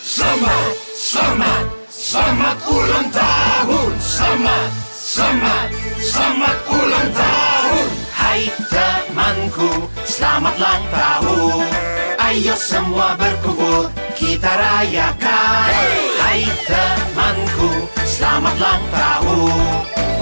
Selamat, selamat, selamat ulang tahun. Selamat, selamat, selamat ulang tahun. Hai temanku, selamat ulang tahun. Ayo semua berkumpul, kita rayakan. Hai temanku, selamat ulang tahun.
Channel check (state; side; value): inverted; both; correlation -1.00